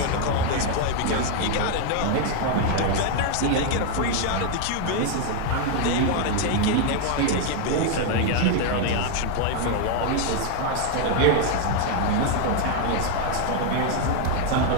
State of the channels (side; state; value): both; different; correlation 0.00